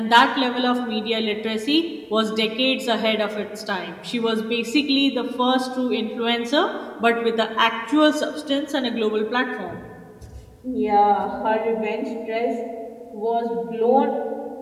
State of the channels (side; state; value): both; identical; correlation 1.00